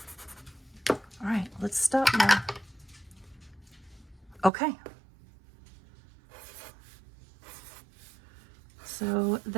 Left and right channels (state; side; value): drops out; left; at 4.5 s